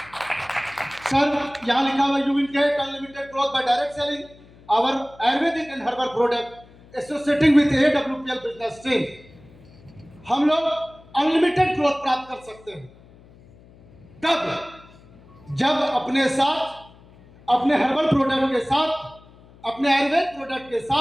सर, यहां लिखा हुआ you will get unlimited growth by direct selling our ayurvedic and herbal product associating with AWPL business stream. हम लोग अनलिमिटेड ग्रोथ प्राप्त कर सकते हैं कब? जब अपने साथ, अपने हर्बल प्रोडक्ट के साथ, अपने आयुर्वेद प्रोडक्ट के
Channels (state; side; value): noise; left; hum, 25 dB below the sound